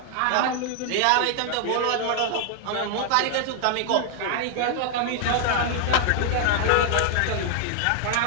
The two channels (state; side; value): different; both; correlation 0.00